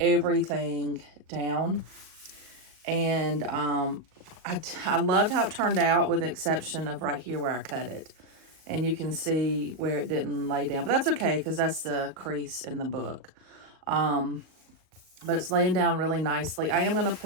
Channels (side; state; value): left; late; 38 ms